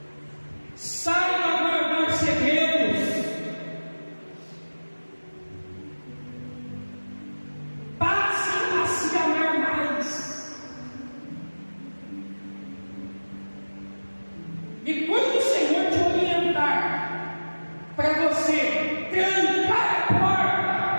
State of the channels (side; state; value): both; inverted; correlation -1.00